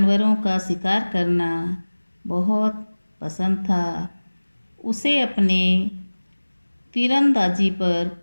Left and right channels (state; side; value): inverted; both; correlation -1.00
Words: का शिकार करना बहुत पसंद था। उसे अपने तीरंदाजी पर